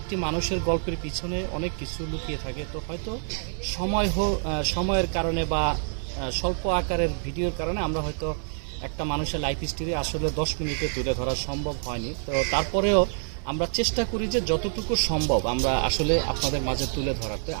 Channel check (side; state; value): left; silent; 60 dB below the other